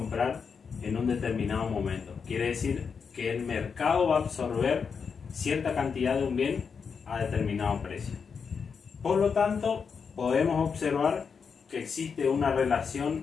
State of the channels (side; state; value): right; quieter; 6.0 dB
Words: en un determinado momento. Quiere decir que el mercado va a absorber cierta cantidad de un bien a determinado precio. Por lo tanto, podemos observar que existe una